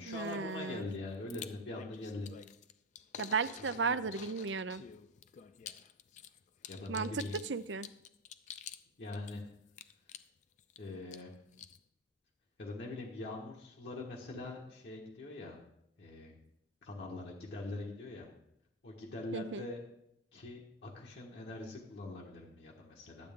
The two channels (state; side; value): normal; both; correlation 0.10